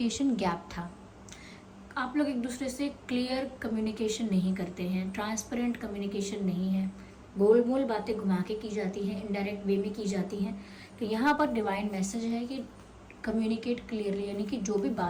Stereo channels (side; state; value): both; identical; correlation 1.00